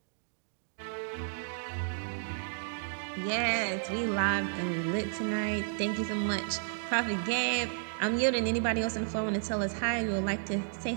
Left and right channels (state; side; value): silent; left; digital silence